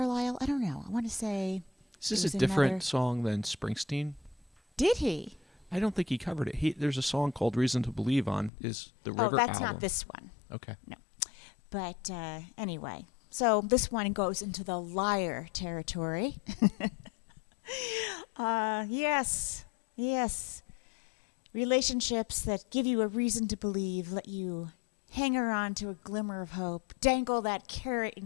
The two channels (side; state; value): right; drops out; at 8.5 s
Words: I don't know. I want to say. Is this a different song than Springsteen? Did he? I don't think he covered it. There's a song called Reason to Believe on the River album. Oh, that's not this one. Okay. No. But anyway, so this one goes into the liar territory. Yes. Relationships that give you a reason to believe, let you hang on to a glimmer of hope, dangle that carrot in